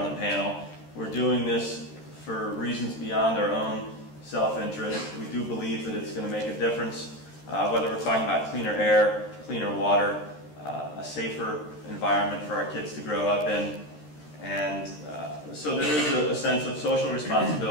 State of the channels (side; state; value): right; late; 13 ms